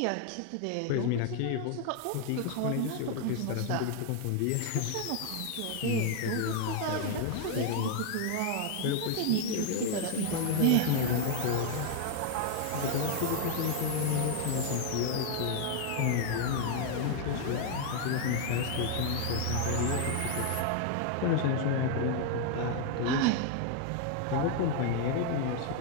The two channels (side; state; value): both; different; correlation 0.00